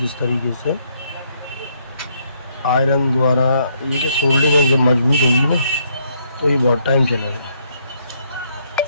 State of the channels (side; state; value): both; inverted; correlation -0.71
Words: तरीके से आयरन द्वारा ये जो सोल्डिंग है जब मजबूत होगी ना, तो ये बहुत टाइम चलेगा